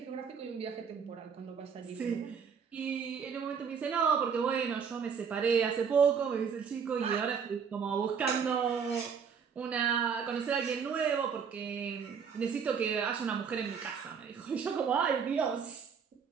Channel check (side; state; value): left; quieter; 6.6 dB